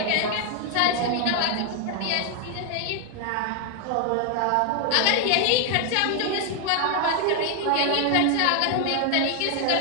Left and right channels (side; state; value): both; different; correlation 0.00